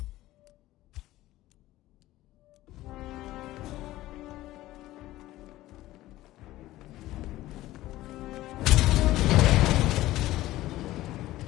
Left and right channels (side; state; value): right; quieter; 16.2 dB